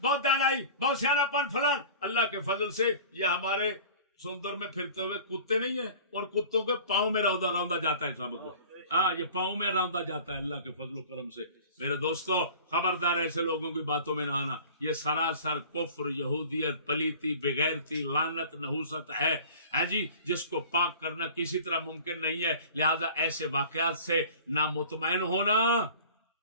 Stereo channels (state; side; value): inverted; both; correlation -0.43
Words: بہت دانائی، بہت سیانا پن فلان، اللہ کے فضل سے یہ ہمارے سندر میں پھرتے ہوئے کتے نہیں ہیں، اور کتوں کے پاؤں میں روندا جاتا ہے سب کو. ہاں، یہ پاؤں میں روندا جاتا ہے اللہ کے فضل و کرم سے. میرے دوستو، خبردار ایسے لوگوں کی باتوں میں نہ آنا. یہ سراسر کفر، یہودیت، پلیتی، بغیرتی، لعنت، نحوست ہے، ہاں جی، جس کو پاک کرنا کسی طرح ممکن نہیں ہے. لہذا ایسے واقعات سے نہ مطمئن ہونا